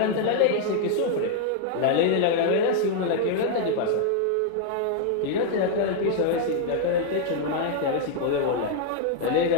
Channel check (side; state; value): both; different; correlation 0.00